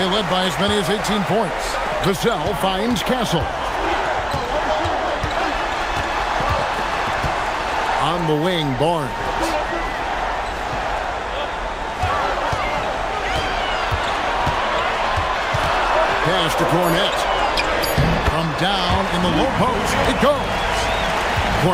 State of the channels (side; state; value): both; identical; correlation 1.00